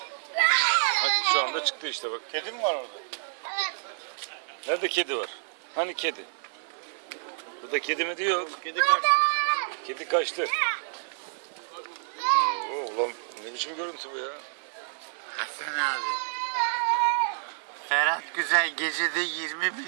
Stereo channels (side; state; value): left; silent; 59 dB below the other